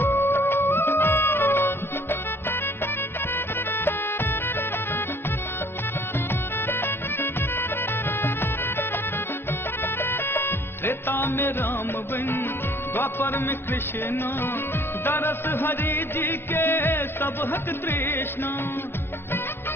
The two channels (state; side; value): late; right; 0.11 ms